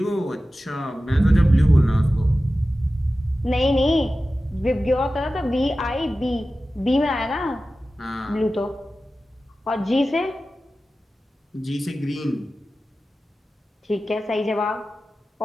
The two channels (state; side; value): normal; both; correlation 0.95